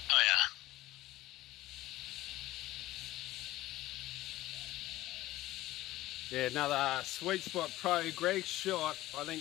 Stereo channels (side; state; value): right; quieter; 16.9 dB